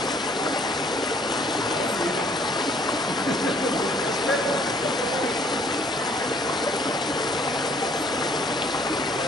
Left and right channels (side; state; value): both; normal; correlation 0.60